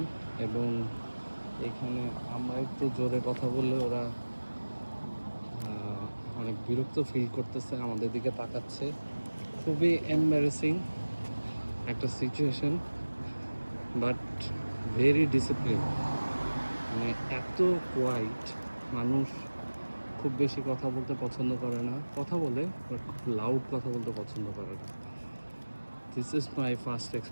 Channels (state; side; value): inverted; both; correlation -1.00